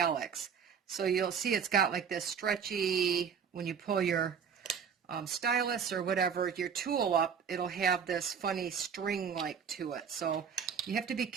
So you'll see it's got like this stretchy, when you pull your stylus or whatever, your tool up, it'll have this funny string-like to it. So you have to be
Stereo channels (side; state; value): left; quieter; 7.0 dB